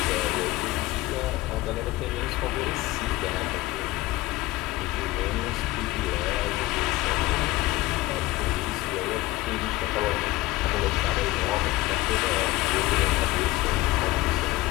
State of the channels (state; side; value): quieter; right; 18.4 dB